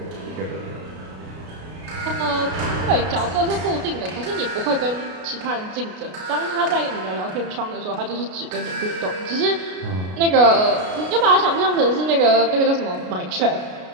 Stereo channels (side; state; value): left; late; 33 ms